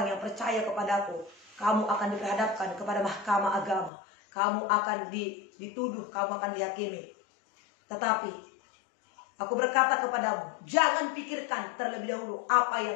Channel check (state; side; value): drops out; right; at 3.9 s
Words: yang percaya kepadaku, kamu akan diperhadapkan kepada mahkamah agama, kamu akan dituduh, kamu akan dihakimi. Tetapi aku berkata kepadamu, jangan pikirkan terlebih dahulu apa